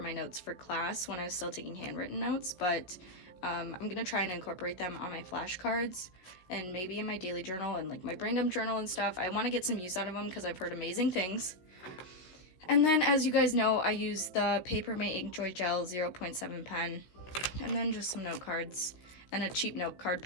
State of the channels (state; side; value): late; right; 16 ms